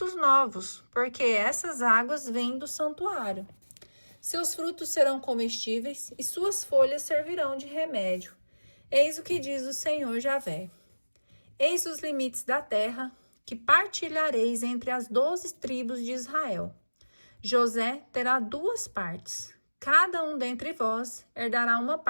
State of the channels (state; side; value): inverted; both; correlation -1.00